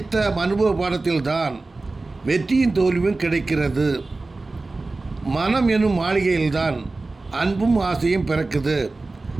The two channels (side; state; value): left; quieter; 3.4 dB